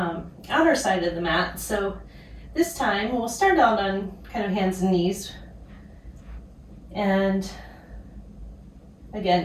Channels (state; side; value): identical; both; correlation 1.00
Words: outer side of the mat. So this time we'll start out on kind of hands and knees, and